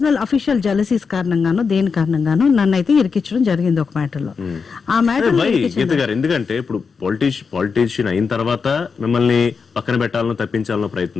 అఫీషియల్ జెలసీస్ కారణంగానో దేని కారణంగానో నన్ను అయితే ఇరికించడం జరిగింది ఒక మ్యాటర్లో. ఆ మ్యాటర్ ఎందుకంటే ఇప్పుడు పాలిటీషియన్ అయిన తర్వాత మిమ్మల్ని పక్కన పెట్టాలనో తప్పించాలనో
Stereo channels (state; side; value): quieter; right; 5.4 dB